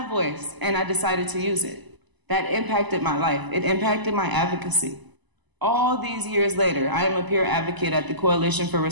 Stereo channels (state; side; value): late; left; 1.0 ms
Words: a voice, and I decided to use it. That impacted my life. It impacted my advocacy. All these years later, I am a peer advocate at the Coalition for